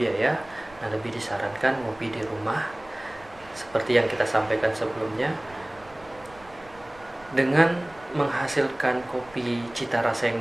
Nah, lebih disarankan ngopi di rumah seperti yang kita sampaikan sebelumnya, dengan menghasilkan kopi cita rasa yang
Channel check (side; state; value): right; noise; rumble, 24 dB below the sound